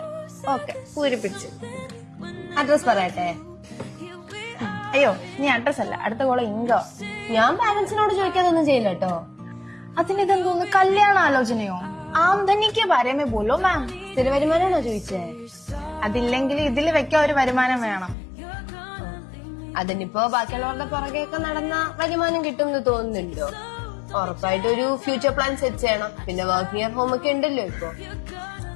Okay, പൂരിപ്പിച്ചു. അഡ്രസ് പറയട്ടെ? അയ്യോ, നീ അഡ്രസ് അല്ല, അടുത്ത കോള ഇങ്കോ. ഞാൻ പാരന്റ്സിനോട് ചോദിക്കാതൊന്നും ചെയ്യില്ല കേട്ടോ. അതിനിതെന്തോന്ന്, കല്യാണ ആലോചനയോ? ആംദനിക്ക് ബാരേമേ ബോലോ മാം. സ്ഥിര വരുമാനാണോ ചോദിച്ചേ? അതില്ലെങ്കിൽ ഇതിൽ വെക്കാൻ ഒരു വരുമാനം വേണം. അതിനിപ്പോ ബാക്കിയുള്ളവരുടെ പുറകെയൊക്കെ നടന്ന വരുമാനം കിട്ടും എന്ന് തോന്നുന്നുണ്ടോ? ഉറപ്പായിട്ട് ഒരു ഫ്യൂച്ചർ പ്ലാൻ സെറ്റ് ചെയ്യണം. പിന്നെ വർക്ക് നിയർ ഹോം ഒക്കെ ഉണ്ടല്ലോ ഇപ്പൊ.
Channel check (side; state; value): right; drops out; at 18.2 s